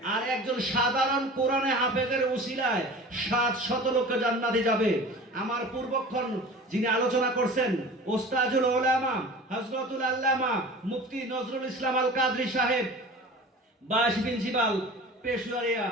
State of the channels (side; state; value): both; normal; correlation 0.39